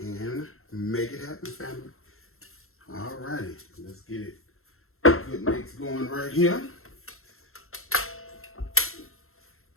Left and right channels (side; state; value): right; late; 0.62 ms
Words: and make it happen, family. All righty, let's get it. Good mix going right here. There